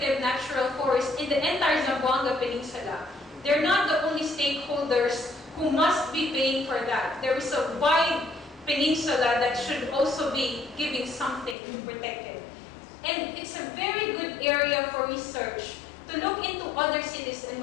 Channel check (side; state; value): right; drops out; at 11.6 s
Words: natural forest in the entire Zamboanga Peninsula, they're not the only stakeholders who must be paying for that. There is a wide peninsula that should also be giving something to protect it. And it's a very good area for research to look into other cities and